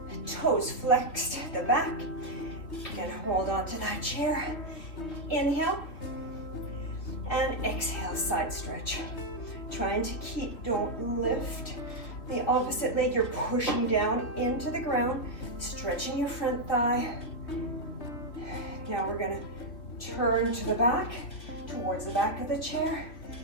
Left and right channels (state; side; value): late; right; 3.1 ms